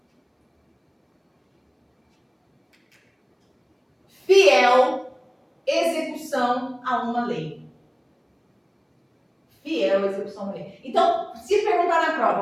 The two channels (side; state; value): both; identical; correlation 1.00